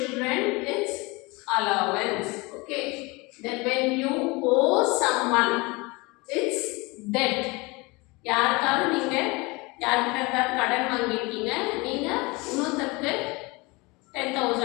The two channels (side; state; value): right; quieter; 25.2 dB